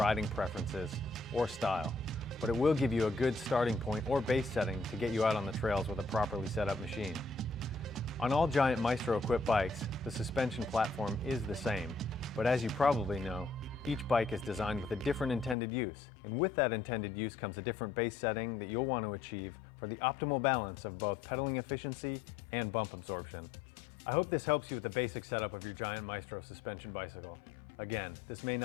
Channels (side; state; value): right; drops out; at 15.6 s